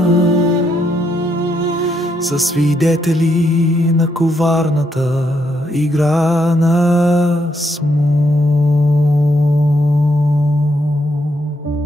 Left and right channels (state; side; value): normal; both; correlation 0.77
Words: са свидетели на коварната игра на смут.